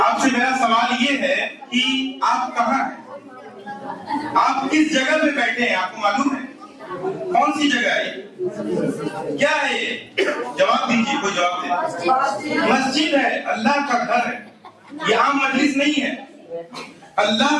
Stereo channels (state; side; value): identical; both; correlation 1.00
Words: آپ سے میرا سوال یہ ہے کہ آپ کہاں ہیں؟ آپ کس جگہ پہ بیٹھے ہیں؟ آپ کو معلوم ہے کون سی جگہ ہے؟ کیا ہے یہ؟ جواب دیجیے، کوئی جواب دے. مسجد ہے، اللہ کا گھر ہے. یہ عام مجلس نہیں ہے،